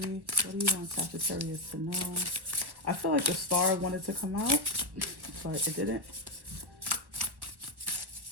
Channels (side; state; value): left; late; 1.1 ms